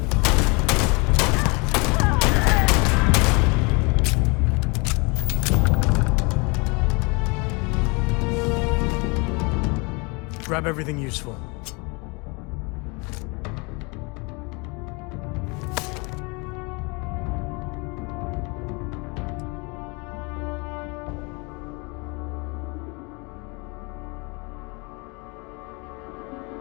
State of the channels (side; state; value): right; quieter; 29.8 dB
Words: Grab everything useful.